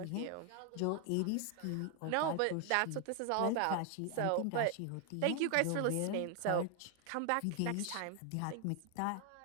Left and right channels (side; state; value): both; different; correlation 0.00